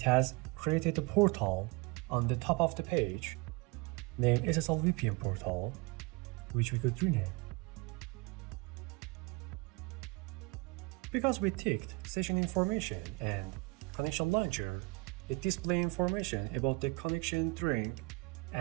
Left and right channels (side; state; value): left; quieter; 26.5 dB